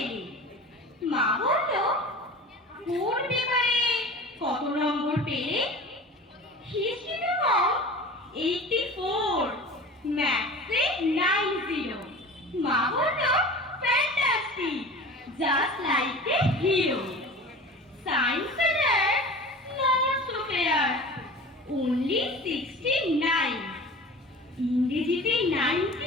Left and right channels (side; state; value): both; normal; correlation 0.38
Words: মা বলল, কোন পেপারে কত নম্বর পেলে? হিস্ট্রিতে কম 84, ম্যাথসে 90। মা বলল, fantastic, just like a hero. সায়েন্সে নট সো ফেয়ার, only 69। ইংরেজিতে